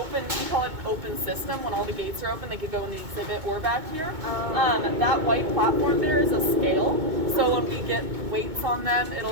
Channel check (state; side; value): late; left; 2.2 ms